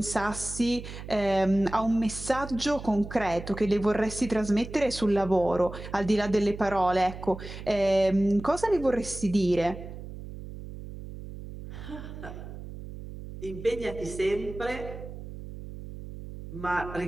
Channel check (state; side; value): noise; right; hum, 11 dB below the sound